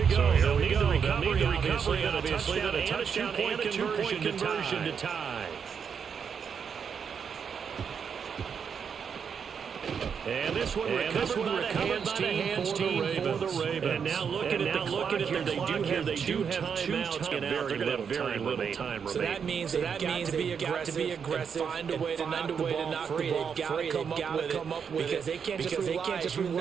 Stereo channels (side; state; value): left; quieter; 6.8 dB